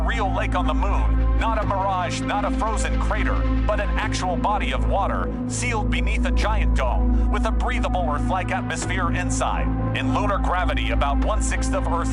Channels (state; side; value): identical; both; correlation 1.00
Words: real lake on the moon? Not a mirage, not a frozen crater, but an actual body of water, sealed beneath a giant dome, with a breathable Earth-like atmosphere inside. In lunar gravity, about 1/6 of